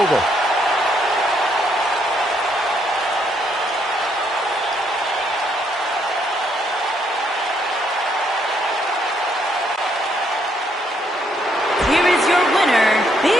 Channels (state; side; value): normal; both; correlation 0.72